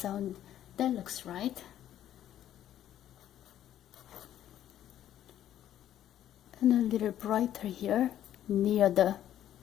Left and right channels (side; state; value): right; quieter; 11.6 dB